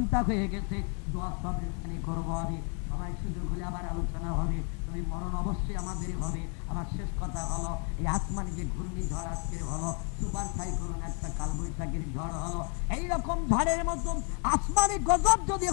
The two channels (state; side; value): quieter; right; 39.6 dB